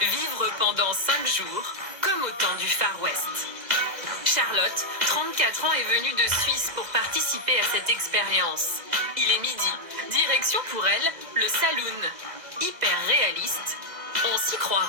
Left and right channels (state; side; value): late; left; 2.0 ms